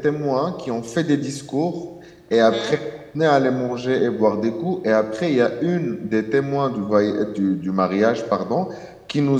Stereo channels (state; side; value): identical; both; correlation 1.00